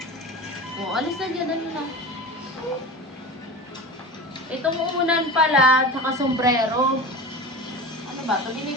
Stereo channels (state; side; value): normal; both; correlation 0.31